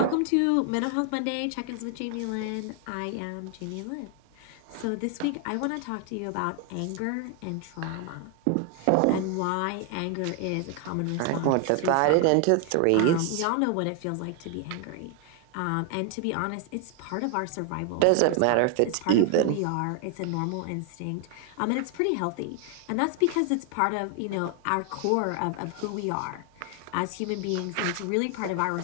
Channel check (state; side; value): different; both; correlation 0.00